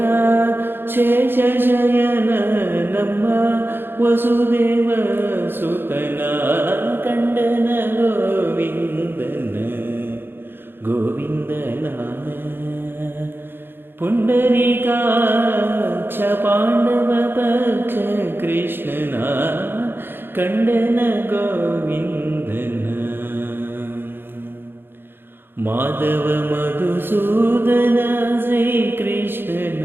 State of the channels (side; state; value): left; late; 0.10 ms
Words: ಶೇಷಶಯನ ನಮ್ಮ ವಸುದೇವ ಸುತನ ಕಂಡನ ಗೋವಿಂದನ ಗೋವಿಂದನ ಪುಂಡರೀಕಾಕ್ಷ ಪಾಂಡವ ಪಕ್ಷ ಕೃಷ್ಣನ ಕಂಡನ ಗೋವಿಂದನ ಮಾಧವ ಮಧುಸೂದನ ಶ್ರೀಕೃಷ್ಣನ